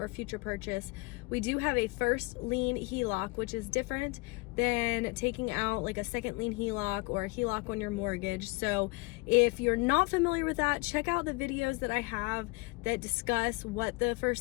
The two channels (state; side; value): quieter; right; 26.7 dB